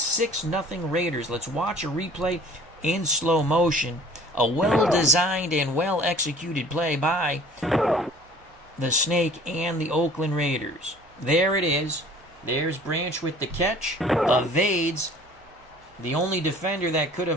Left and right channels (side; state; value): both; normal; correlation 0.49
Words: Raiders. Let's watch a replay in slow motion. A well-designed and well-executed play by the Snake and the Oakland Raiders. There it is. There's Branch with the catch. Evades the only defender that could